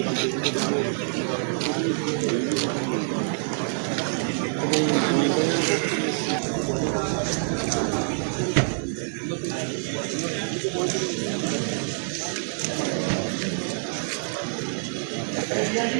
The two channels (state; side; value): silent; left; digital silence